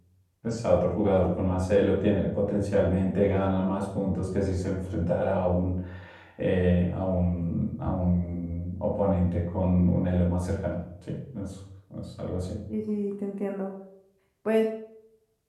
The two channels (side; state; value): both; identical; correlation 1.00